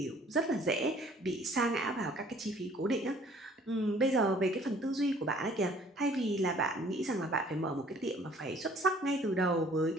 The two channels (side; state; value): both; normal; correlation 0.56